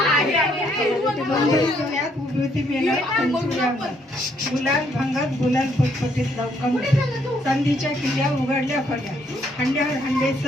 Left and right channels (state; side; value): normal; both; correlation 0.70